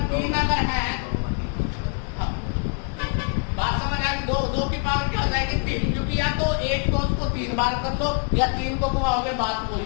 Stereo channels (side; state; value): right; quieter; 34.6 dB